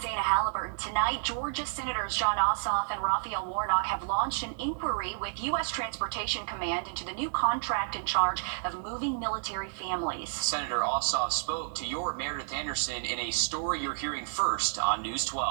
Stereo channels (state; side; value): silent; left; digital silence